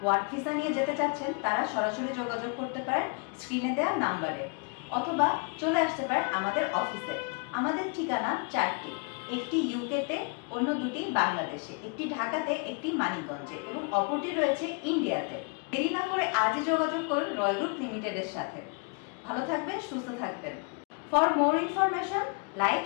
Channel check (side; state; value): right; quieter; 34.3 dB